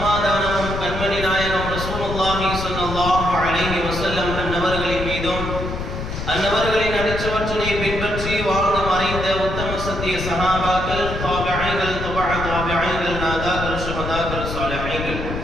கண்மணி நாயகம் ரசூலுல்லாஹி ஸல்லல்லாஹு அலைஹி வஸல்லம் அன்னவர்களின் மீதும் அன்னவர்களின் அடிச்சுவற்றினை பின்பற்றி வாழ்ந்து மறைந்த உத்தம சத்திய சஹாபாக்கள், தாபிஈன்கள், தாபிஈன்கள், நாதாக்கள், ஷுஹதாக்கள், சாலிஹீன்கள்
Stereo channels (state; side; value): noise; left; rumble, 6 dB below the sound